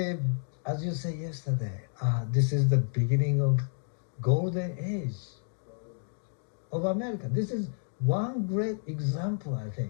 as you said yesterday, this is the beginning of golden age of America. This is one great example, I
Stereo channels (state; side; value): silent; right; 56 dB below the other